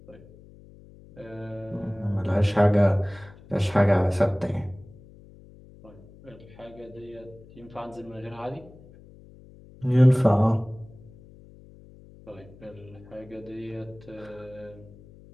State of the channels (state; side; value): noise; left; hum, 22 dB below the sound